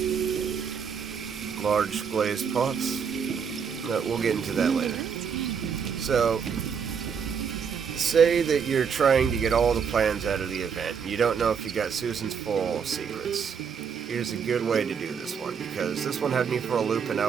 Large glazed pots. We'll get into that later. So, say that you're trying to get all the plans out of the event, and you don't know if you got Susan's Floral Secrets. Here's a good way to do this one, because this one had me for a loop and I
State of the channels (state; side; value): quieter; left; 6.7 dB